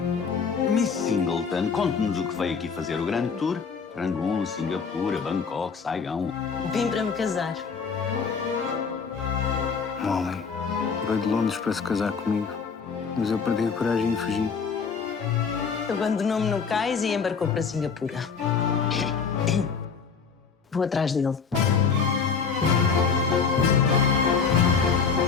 Miss Singleton, conte-nos o que veio aqui fazer o grande tour. Rangoon, Singapura, Bangkok, Saigão. Vim para me casar. Molly, veio de Londres para se casar comigo, mas eu perdi a coragem e fugi. Abandonou-me no cais e embarcou para Singapura. Vou atrás dele.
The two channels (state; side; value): quieter; right; 5.7 dB